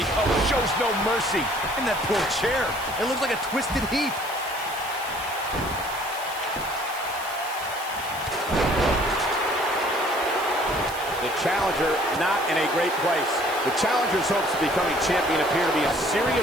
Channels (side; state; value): right; noise; hiss, 14 dB below the sound